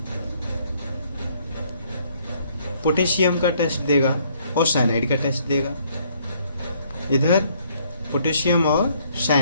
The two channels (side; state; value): both; inverted; correlation -0.66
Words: पोटेशियम का टेस्ट देगा और साइनाइड का टेस्ट देगा, इधर पोटेशियम और